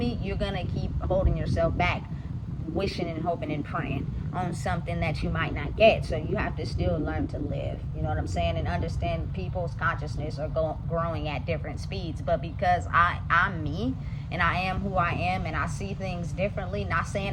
you're gonna keep holding yourself back, wishing and hoping and praying on something that you might not get. So you have to still learn to live, you know what I'm saying, and understand people's consciousness are growing at different speeds. But because I'm me and I am who I am and I see things differently, not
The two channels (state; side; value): identical; both; correlation 1.00